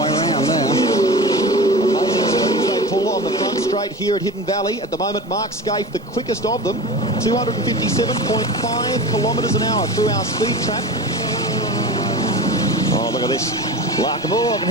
around there. Amazing speeds they pull on the front straight here at Hidden Valley. At the moment, Mark Scaife, the quickest of them, 257.5 kilometres an hour through our speed trap. Oh, look at this. Larkham. Oh, I can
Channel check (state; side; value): normal; both; correlation 0.31